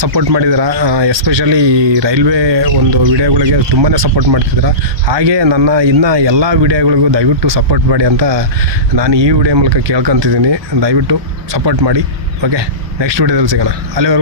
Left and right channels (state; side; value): late; left; 1.2 ms